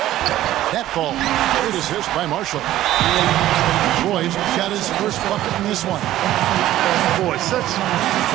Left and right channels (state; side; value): quieter; left; 13.9 dB